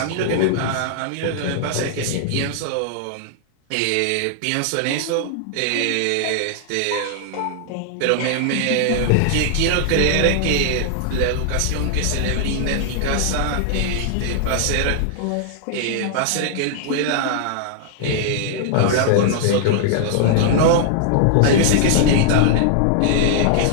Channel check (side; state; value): both; different; correlation -0.01